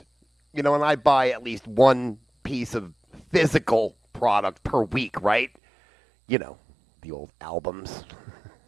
and I buy at least one piece of physical product per week, right? The old albums,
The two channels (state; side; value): drops out; left; at 5.5 s